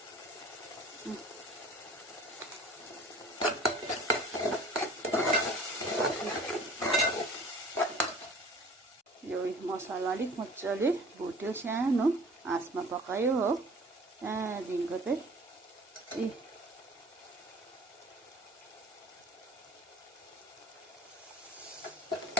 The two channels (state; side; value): normal; both; correlation 0.47